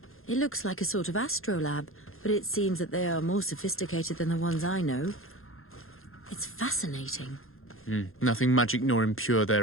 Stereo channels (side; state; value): right; late; 0.61 ms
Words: It looks like a sort of astrolab, but it seems that they are more sophisticated than the ones I know. It's fascinating. Nothing magic nor impure